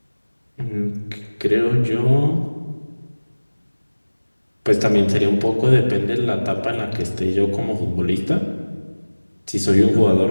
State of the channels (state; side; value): inverted; both; correlation -1.00